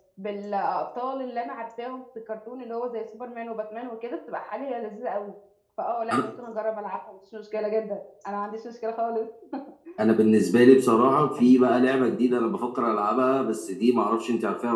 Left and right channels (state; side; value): identical; both; correlation 1.00